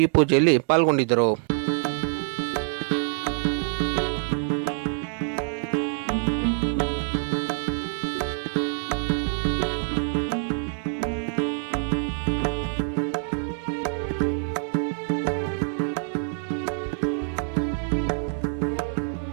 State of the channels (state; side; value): silent; left; 61 dB below the other